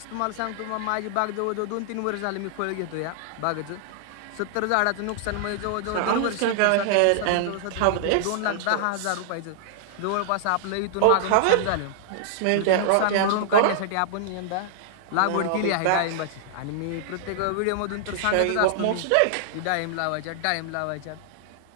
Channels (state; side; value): different; both; correlation -0.01